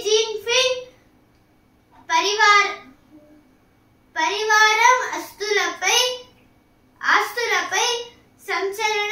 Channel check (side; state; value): both; identical; correlation 1.00